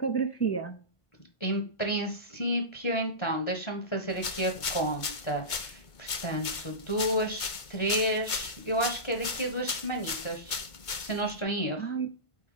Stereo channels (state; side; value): late; right; 2.2 ms